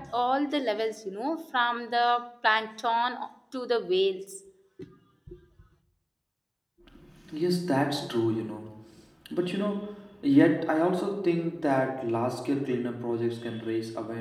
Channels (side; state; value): both; identical; correlation 1.00